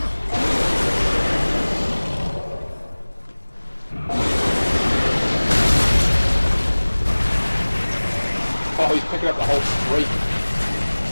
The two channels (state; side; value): inverted; both; correlation -1.00